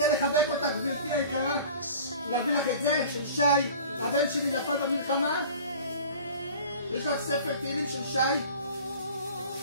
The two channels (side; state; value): both; inverted; correlation -0.42